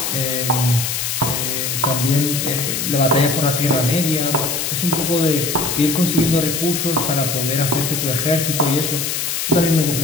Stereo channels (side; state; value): left; noise; hiss, 1 dB below the sound